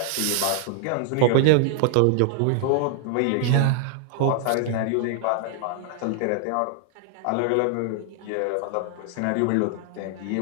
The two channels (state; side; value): different; both; correlation 0.00